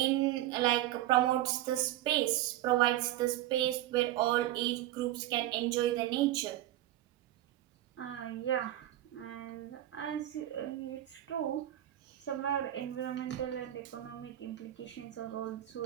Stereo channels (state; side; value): quieter; left; 14.0 dB